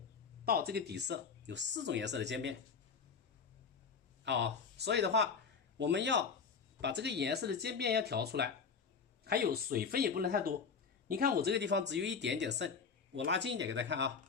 到这个底色，有4种颜色的渐变啊。所以的话，我们要把这个颜色的渐变要调出来，还有水分也不能太多。你看我这个地方只有一点点剩，我拉近一点给大家看啊。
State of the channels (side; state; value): right; quieter; 5.8 dB